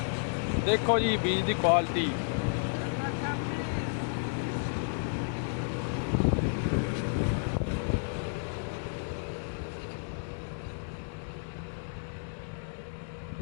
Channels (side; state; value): right; silent; digital silence